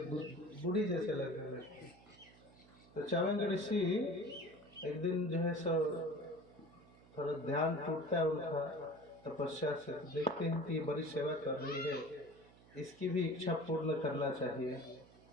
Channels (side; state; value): right; noise; hum, 24 dB below the sound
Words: बूढ़ी जैसे लगने लगती। तो च्यवनग ऋषि एक दिन जो है सो थोड़ा ध्यान टूटता है उनका तपस्या से, तो देखते हैं कि ये बड़ी सेवा कर रही है, इसकी भी इच्छा पूर्ण करना चाहिए।